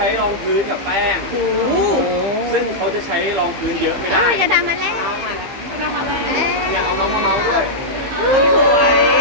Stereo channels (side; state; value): left; late; 15 ms